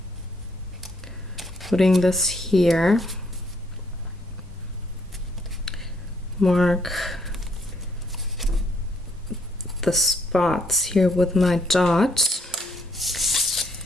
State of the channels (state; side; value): normal; both; correlation 0.70